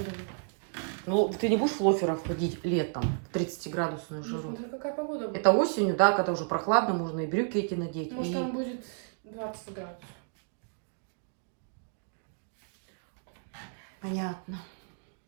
Ну, ты не будешь в лоферах ходить летом в 30-градусную жару? Смотри, какая погода будет. Это осенью, да, когда уже прохладно, можно и брюки эти надеть. Может, и- там будет 20 градусов. Понятно.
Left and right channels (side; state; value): left; silent; 57 dB below the other